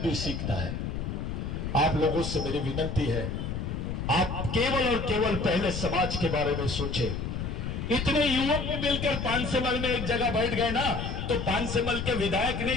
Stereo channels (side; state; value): left; noise; rumble, 4 dB below the sound